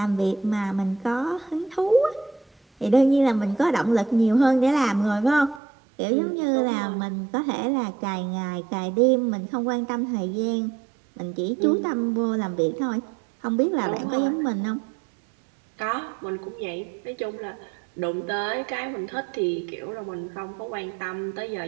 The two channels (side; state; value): left; drops out; at 5.6 s